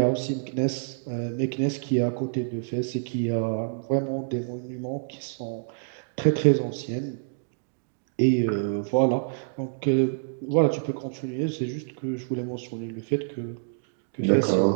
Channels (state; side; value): silent; left; digital silence